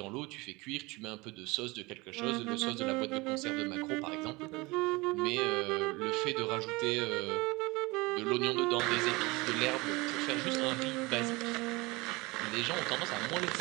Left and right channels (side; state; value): left; quieter; 23.8 dB